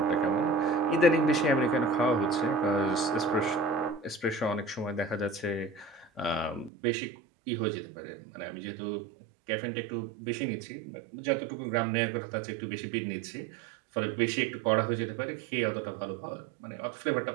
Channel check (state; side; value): drops out; left; at 6.7 s